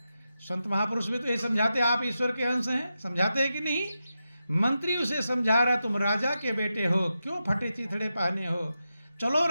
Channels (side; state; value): both; inverted; correlation -0.89